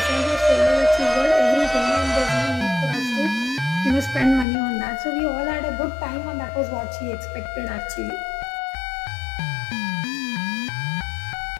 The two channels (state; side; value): drops out; right; at 4.5 s